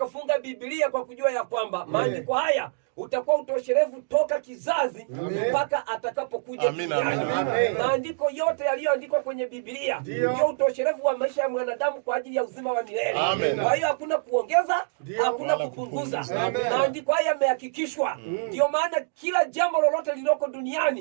Biblia kwa kujua ya kwamba maandiko haya utakuwa utosherevu toka kizazi mpaka atakapokuja duniani. Maandiko yote yaliyoandikwa kwenye Biblia ndio utosherevu wa maisha ya mwanadamu kwa ajili ya uzima wa milele. Kwa hiyo hakuna kuongeza, hakuna kupunguza. Maandiko haya yamehakikishwa. Ndio maana kila jambo lolote lililoko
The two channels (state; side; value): silent; left; digital silence